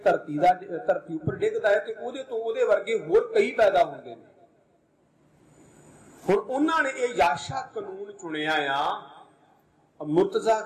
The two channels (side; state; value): both; identical; correlation 1.00